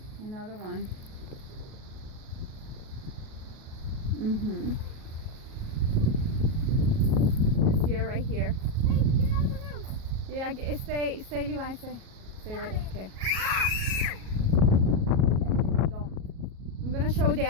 Another one. It's here, right here. Hey, get out of the room. Yeah, stay, Levi, stay right there. Okay. Don't. I'm gonna show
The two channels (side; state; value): left; late; 37 ms